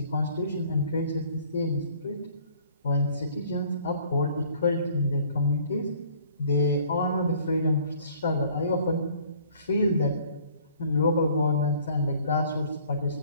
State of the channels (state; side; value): inverted; both; correlation -0.56